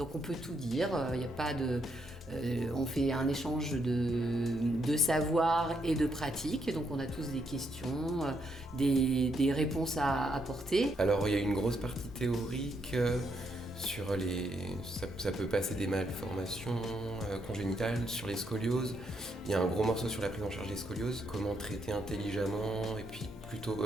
on peut tout dire, il n'y a pas de... on fait un échange de savoir et de pratique, donc on a tous des questions, des réponses à apporter. Alors il y a une grosse partie théorique sur ça peut passer des malformations congénitales, sur les scolioses. Il y a un gros morceau sur la prise en charge des scolioses, comment traiter intelligemment et puis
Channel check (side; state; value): both; normal; correlation 0.77